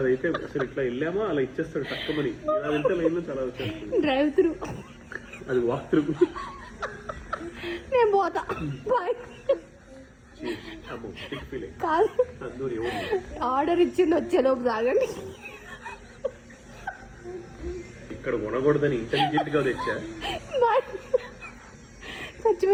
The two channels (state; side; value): identical; both; correlation 1.00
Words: అసలు ఇట్లా వెళ్ళామా అలా ఇచ్చేస్తాడు తక్కువని. ఇలా వెళ్తే లైన్ లో చాలా వచ్చేస్తుంది. డ్రైవ్ త్రూ, అది వాక్ త్రూ. నేను పోతా, బాయ్. ఆర్డర్ ఇచ్చింది వచ్చేలోపు తాగండి. ఇక్కడ కొనకూడదని ఇంటెలిజెంట్ గా తెచ్చా.